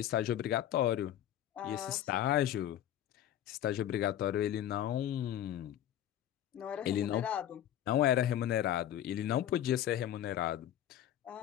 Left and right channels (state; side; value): quieter; right; 11.5 dB